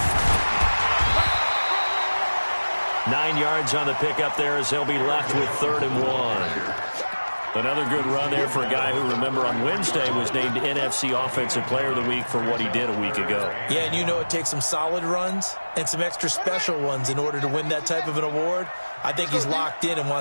9 yards on the pickup there as they'll be left with 3rd and 1. Another good run there for a guy who, remember, on Wednesday was named NFC Offensive Player of the Week for what he did a week ago. Yeah, and you know it takes some solid runs and some extra special ones in order to win that type of an award. I think he's locked in and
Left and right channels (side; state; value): both; inverted; correlation -1.00